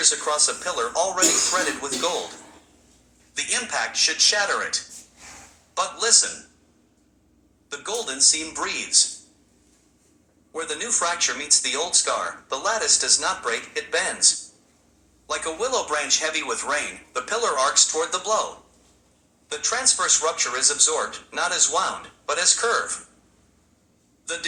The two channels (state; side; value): identical; both; correlation 1.00